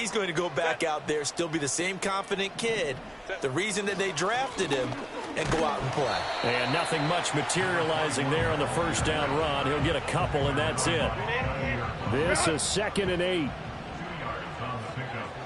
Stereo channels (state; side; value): identical; both; correlation 1.00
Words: going to go back out there, still be the same confident kid, the reason that they drafted him, and go out and play. And nothing much materializing there on the first down run. He'll get a couple, and that's it. This is 2nd and 8. 2 yards on the pickup.